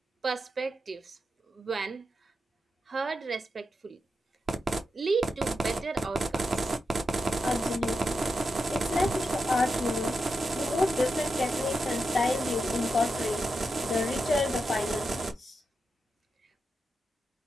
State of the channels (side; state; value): both; normal; correlation 0.88